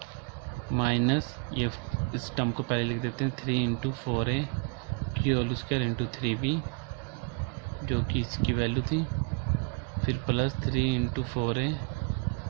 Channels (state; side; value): quieter; left; 33.2 dB